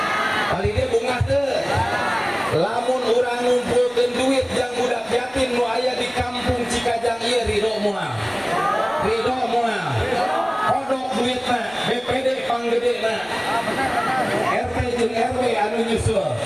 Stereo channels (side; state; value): right; noise; rumble, 29 dB below the sound